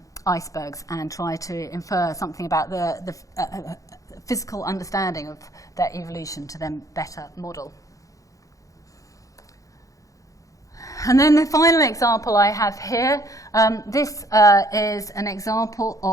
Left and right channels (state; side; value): late; right; 0.16 ms